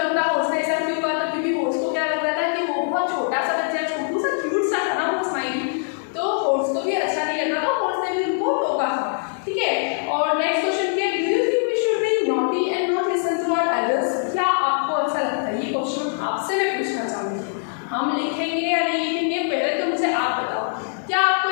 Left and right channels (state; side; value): silent; right; digital silence